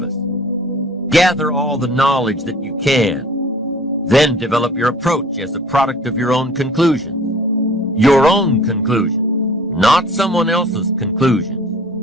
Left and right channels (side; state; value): both; normal; correlation 0.48